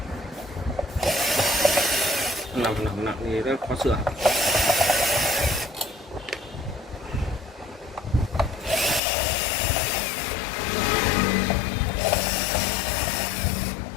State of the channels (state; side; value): drops out; right; at 9.0 s